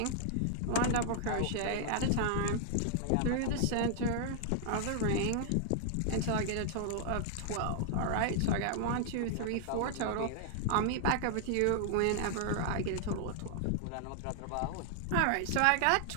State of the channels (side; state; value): both; different; correlation -0.01